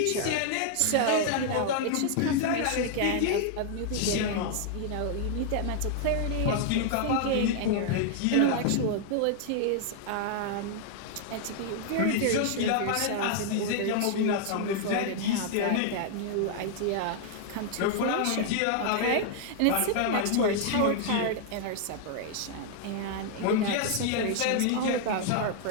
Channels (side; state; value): both; different; correlation 0.00